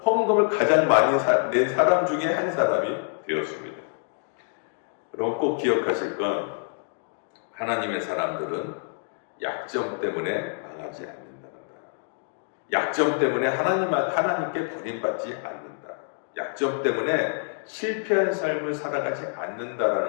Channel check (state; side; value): silent; right; digital silence